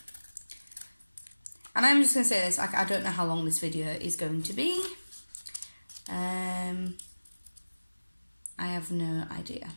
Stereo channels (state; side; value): inverted; both; correlation -1.00